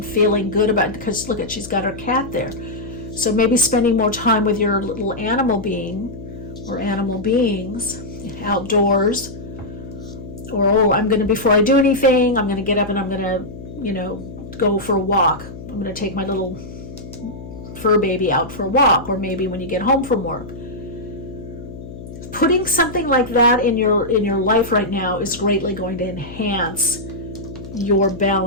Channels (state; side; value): noise; left; hum, 13 dB below the sound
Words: feeling good about it. Because look, she's got her cat there. So maybe spending more time with your little animal being or animal beings outdoors. Or, I'm going to, before I do anything, I'm going to get up and I'm going to go for a walk. I'm going to take my little fur baby out for a walk, or maybe when you get home from work. Putting something like that in your life right now is greatly going to enhance your